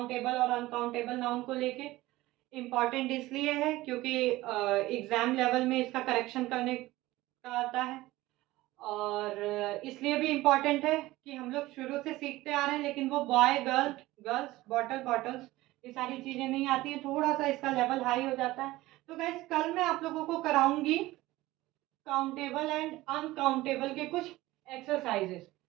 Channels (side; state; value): left; quieter; 18.0 dB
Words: और अनकाउंटेबल नाउन को लेके। इम्पॉर्टेंट इसलिए है क्योंकि एग्जाम लेवल में इसका करेक्शन करने का आता है, और इसलिए भी इम्पॉर्टेंट है कि हम लोग शुरू से सीखते आ रहे हैं, लेकिन वो boy girl, girls bottle bottles, ये सारी चीजें नहीं आती हैं, थोड़ा सा इसका लेवल हाई हो जाता है। तो गाइस कल मैं आप लोगों को कराऊंगी काउंटेबल एंड अनकाउंटेबल के कुछ एक्सरसाइजेस,